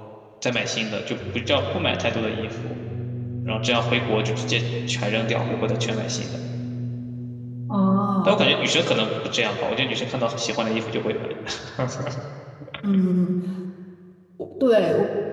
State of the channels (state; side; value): identical; both; correlation 1.00